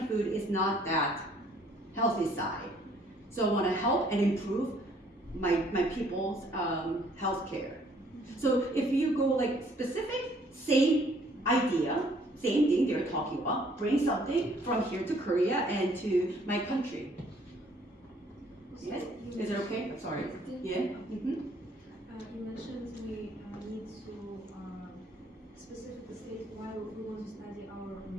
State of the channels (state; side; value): normal; both; correlation 0.62